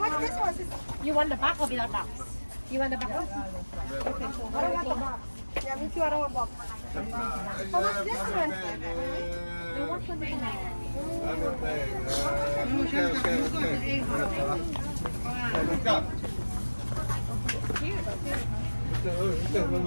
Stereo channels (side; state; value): both; inverted; correlation -1.00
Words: this one? You want the back or without box? You want the back? I don't want the box. Yeah, me too. I don't want box. How much this one?